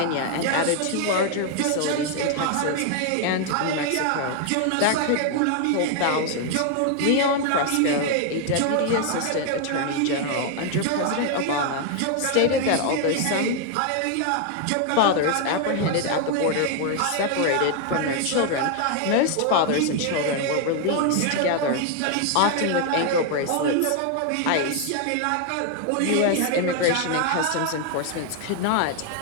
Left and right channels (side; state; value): both; different; correlation 0.00